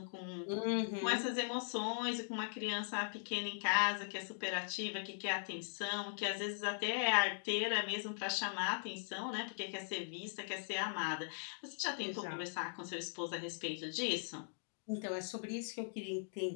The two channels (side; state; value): right; silent; digital silence